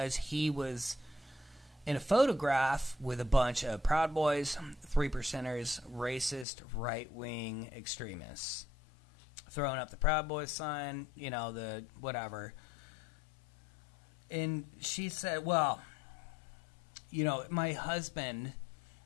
he was in a photograph with a bunch of Proud Boys, 3%ers, racist, right-wing extremists. Throwing up the Proud Boys sign, you know, the whatever. And she said, well, you know, my husband,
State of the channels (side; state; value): right; drops out; at 6.5 s